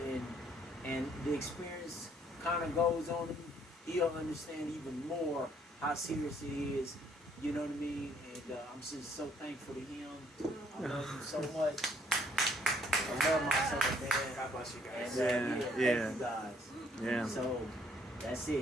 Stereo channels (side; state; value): both; normal; correlation 0.65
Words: and the experience kind of goes on him, he'll understand even more how serious it is. You know what I mean? And I'm just so thankful to him. I love him so much. I love my son, man. God bless you guys. And, thank you guys. Yeah. So that's